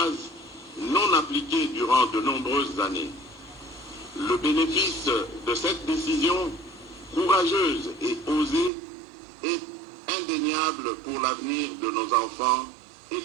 non appliqué durant de nombreuses années. Le bénéfice de cette décision courageuse et osée est indéniable pour l'avenir de nos enfants et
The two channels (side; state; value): left; drops out; at 8.7 s